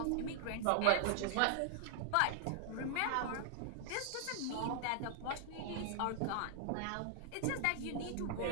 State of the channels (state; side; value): different; both; correlation 0.00